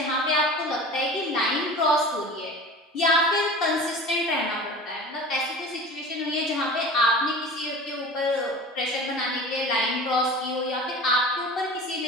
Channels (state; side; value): normal; both; correlation 0.37